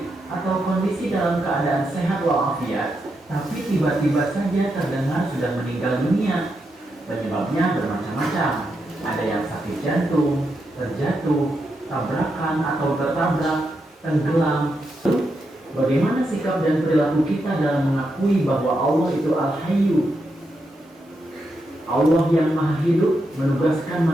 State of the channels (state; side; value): normal; both; correlation 0.84